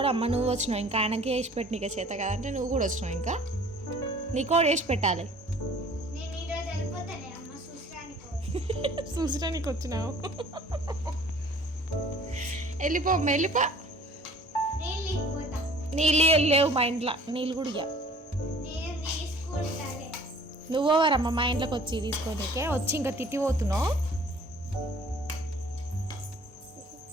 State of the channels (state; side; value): normal; both; correlation 0.51